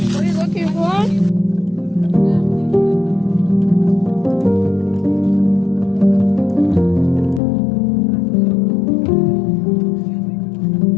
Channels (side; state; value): right; drops out; at 7.4 s